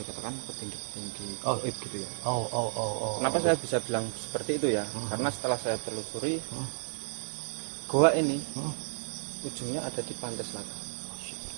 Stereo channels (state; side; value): silent; left; digital silence